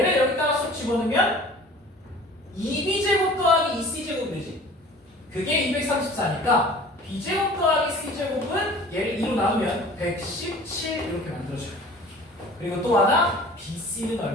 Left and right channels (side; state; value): both; normal; correlation 0.45